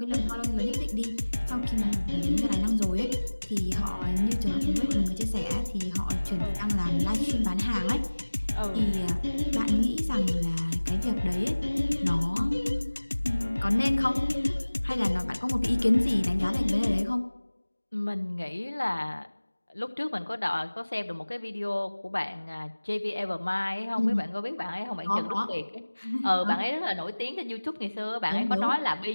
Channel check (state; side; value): inverted; both; correlation -1.00